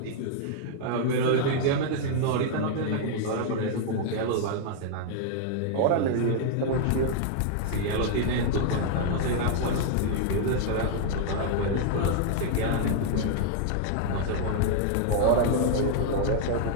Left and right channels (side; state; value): both; different; correlation -0.01